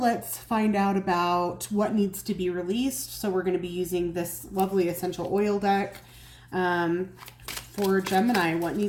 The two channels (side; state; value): both; identical; correlation 1.00